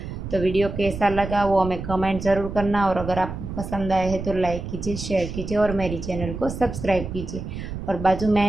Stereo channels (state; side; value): noise; right; rumble, 8 dB below the sound